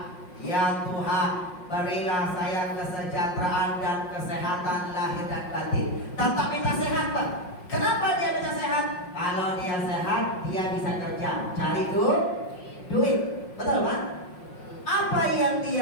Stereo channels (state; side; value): late; right; 5.5 ms